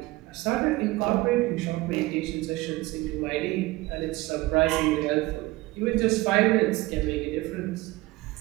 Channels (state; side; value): quieter; left; 20.1 dB